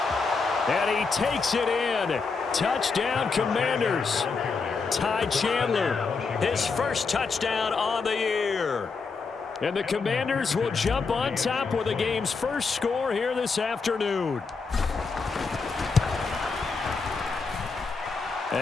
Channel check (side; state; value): right; quieter; 4.7 dB